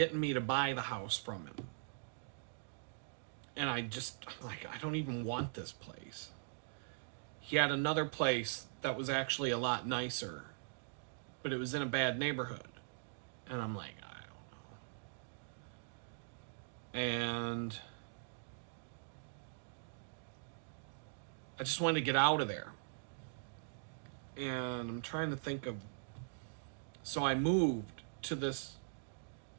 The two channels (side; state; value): left; silent; digital silence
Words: me to buy the house from him. And I'm like, I don't even want this place. He had another place that was actually a lot nicer, but it was in a bad neighborhood. And I'm like, I don't know. And I just wanted to get out of there. And I'm trying to think of... So I moved to this